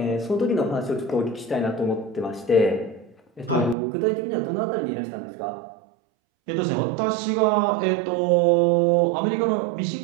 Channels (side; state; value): left; drops out; at 3.8 s